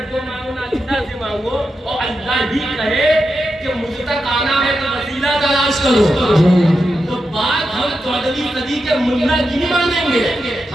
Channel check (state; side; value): normal; both; correlation 0.88